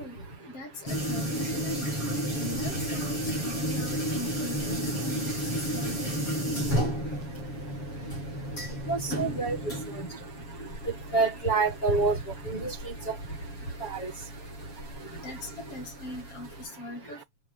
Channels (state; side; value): late; right; 7.3 ms